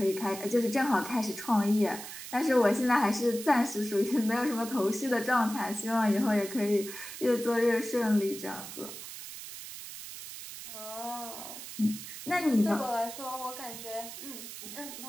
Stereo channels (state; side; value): noise; right; hiss, 11 dB below the sound